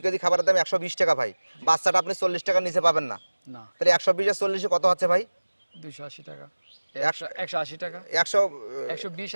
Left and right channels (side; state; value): both; inverted; correlation -1.00